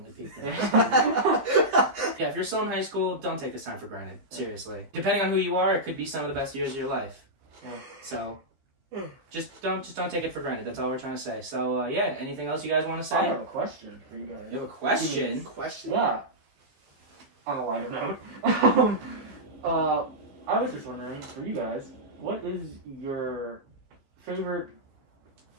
peaked in high school. Yeah, if you're still in high school, don't take this time for granted. Seriously, depending on who you are, it could be some of the best years of your life. Yeah. So, just don't take it for granted. That's all we're trying to say. So anything else you guys want to say? I have a question for you guys. You have a question? Question? Yeah. On a lighter note, I was just wondering for you guys, what is your favorite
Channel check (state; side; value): late; left; 15 ms